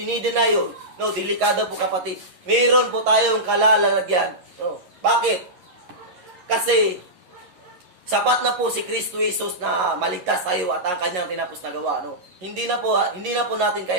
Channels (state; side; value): late; left; 11 ms